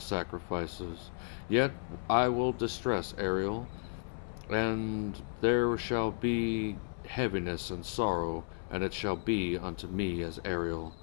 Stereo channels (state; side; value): silent; right; 55 dB below the other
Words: Yet I will distress Ariel, and there shall be heaviness and sorrow, and it shall be unto me as Ariel.